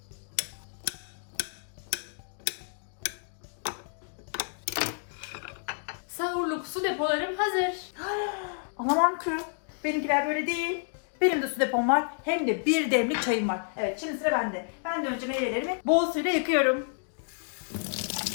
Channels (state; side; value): silent; right; digital silence